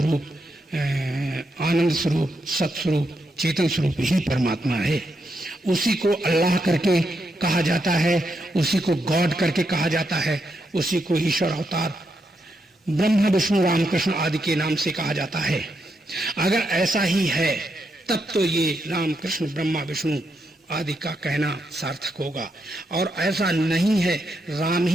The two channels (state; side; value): normal; both; correlation 0.82